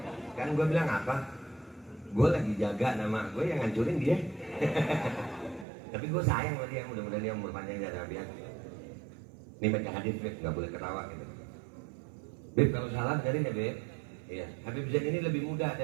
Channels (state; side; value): drops out; left; at 5.7 s